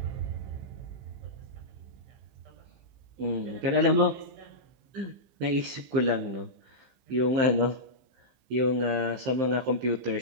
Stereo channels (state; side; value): late; left; 15 ms